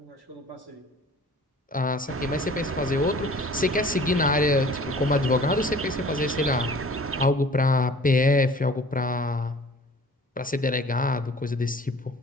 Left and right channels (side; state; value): both; normal; correlation 0.48